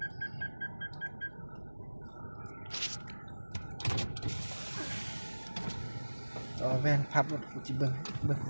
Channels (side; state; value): both; inverted; correlation -1.00